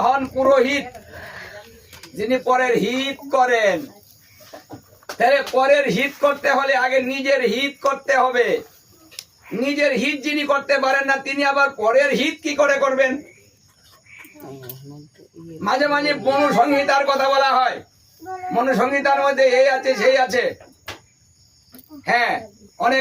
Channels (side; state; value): both; identical; correlation 1.00